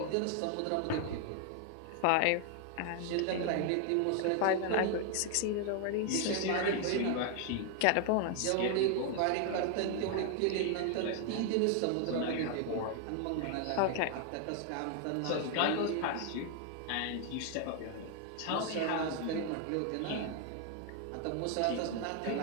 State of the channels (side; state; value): both; different; correlation 0.00